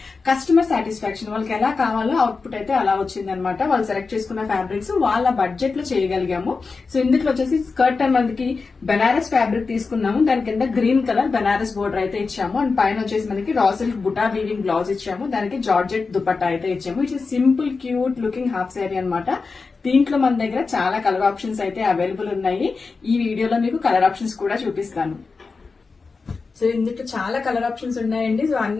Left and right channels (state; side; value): quieter; right; 4.4 dB